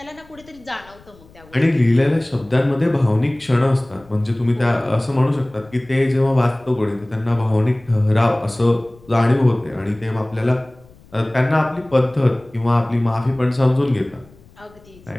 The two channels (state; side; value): noise; left; rumble, 26 dB below the sound